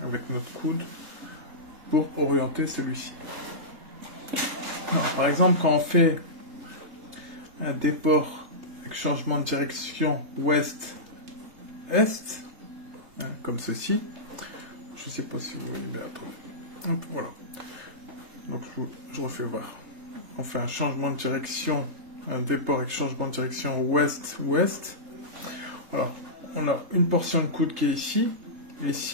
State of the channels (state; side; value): late; left; 3.8 ms